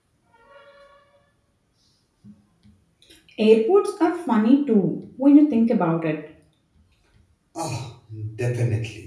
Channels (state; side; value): identical; both; correlation 1.00